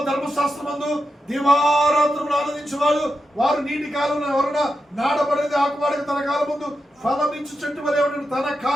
ధర్మశాస్త్రమందు దివారాత్రములు ఆనందించేవాడు వారు నీటి కాలంలో ఎవరైనా నాటబడేది ఆకువాడికి తన కాలం ముందు ఫలమించు చెట్టు వలె ఉండడు. తన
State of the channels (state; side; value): normal; both; correlation 0.88